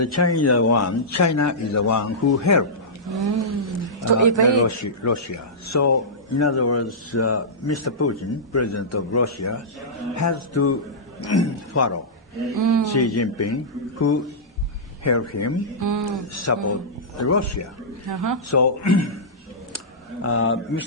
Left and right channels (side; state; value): both; normal; correlation -0.15